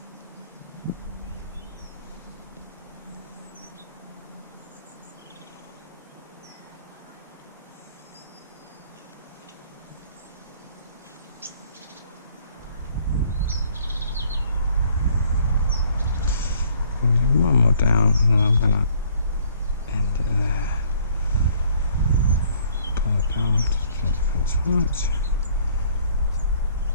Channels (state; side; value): inverted; both; correlation -0.60